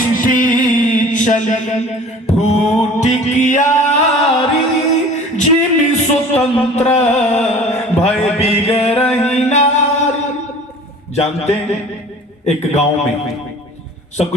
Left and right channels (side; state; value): both; normal; correlation 0.44